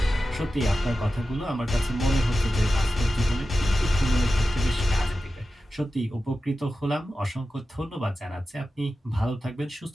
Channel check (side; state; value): both; normal; correlation 0.93